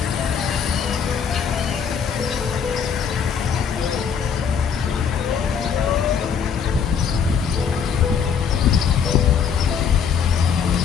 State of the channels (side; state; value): right; quieter; 6.9 dB